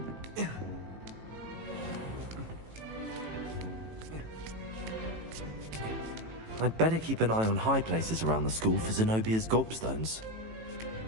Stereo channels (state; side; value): late; left; 18 ms